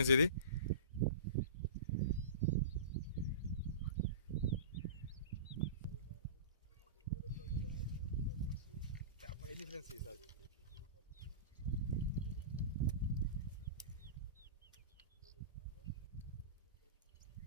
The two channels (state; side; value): inverted; both; correlation -0.32